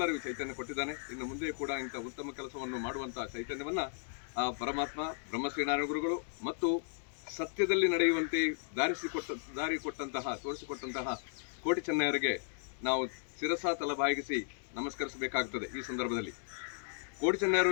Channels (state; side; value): silent; right; digital silence